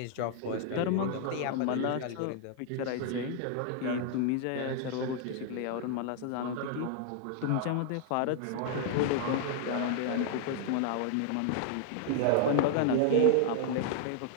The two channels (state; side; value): different; both; correlation -0.01